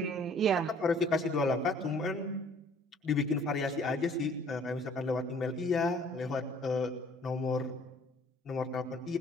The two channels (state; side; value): normal; both; correlation 0.56